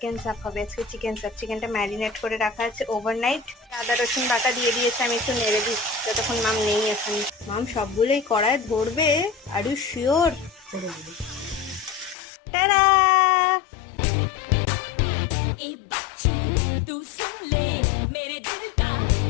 চাপ হবে আজকে। চিকেন চাপ, চিকেনটা ম্যারিনেট করে রাখা আছে ওভারনাইট। আদা রসুন বাটা দিয়ে দিয়েছে, আমি একটু নেড়ে দিই যতক্ষণ মাম নেই এখানে। মাম সবগুলোই কড়ায় ধরবে, আর ইউ শিওর? করে দেবে। টাটা।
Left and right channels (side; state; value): right; drops out; at 12.2 s